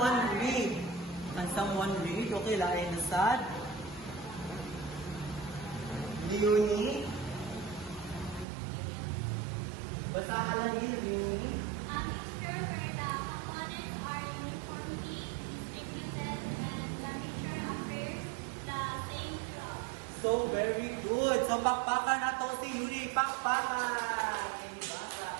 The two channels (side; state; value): left; drops out; at 8.5 s